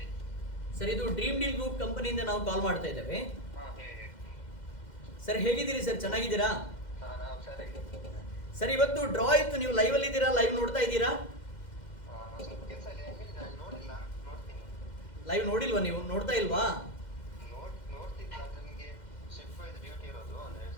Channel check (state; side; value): late; right; 2.1 ms